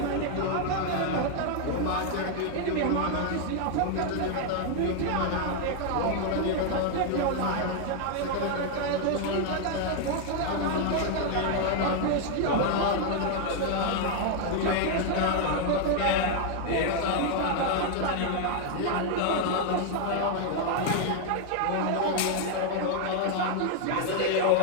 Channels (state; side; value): different; both; correlation 0.00